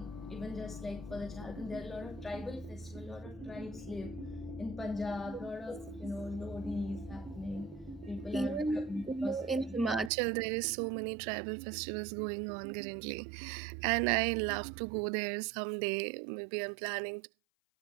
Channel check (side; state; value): left; drops out; at 10.1 s